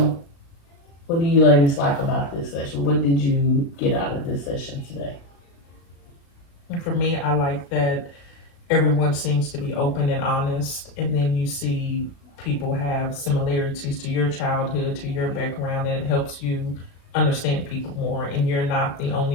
ladies like about this session? What did you get out of this session today? and for me, I like that everyone seems to be open and honest, and then you see people have similarities to your childhood, to your background, and it helps you understand people more, and you're not the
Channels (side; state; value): right; late; 36 ms